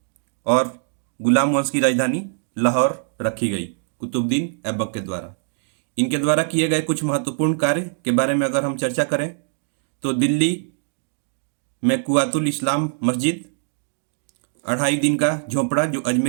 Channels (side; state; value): left; silent; digital silence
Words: और गुलाम वंश की राजधानी लाहौर रखी गई कुतुबुद्दीन ऐबक के द्वारा। इनके द्वारा किए गए कुछ महत्वपूर्ण कार्य के बारे में अगर हम चर्चा करें तो दिल्ली में कुआतुल इस्लाम मस्जिद, 2.5 दिन का झोंपड़ा जो